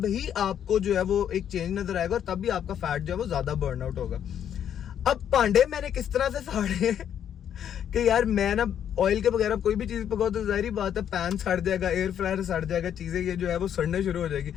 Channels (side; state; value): right; quieter; 9.4 dB